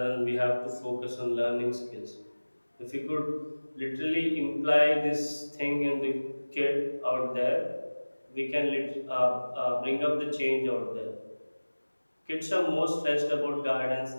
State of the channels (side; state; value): both; inverted; correlation -1.00